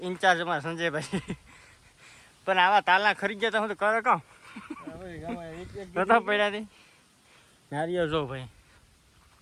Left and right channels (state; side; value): identical; both; correlation 1.00